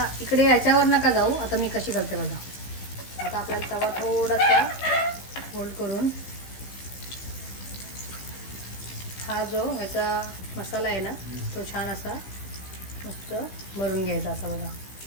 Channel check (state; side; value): late; right; 15 ms